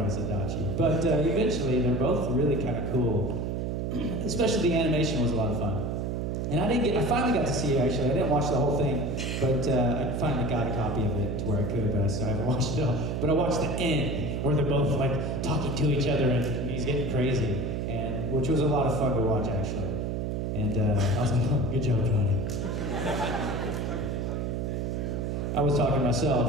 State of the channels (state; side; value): noise; right; hum, 1 dB below the sound